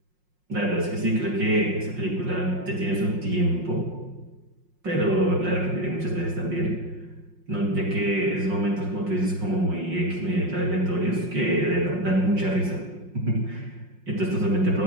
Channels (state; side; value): late; left; 5.6 ms